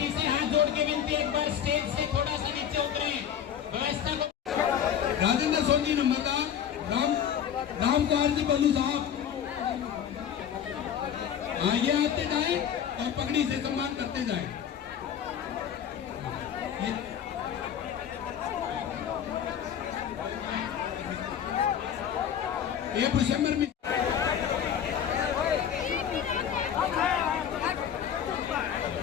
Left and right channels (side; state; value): right; quieter; 8.9 dB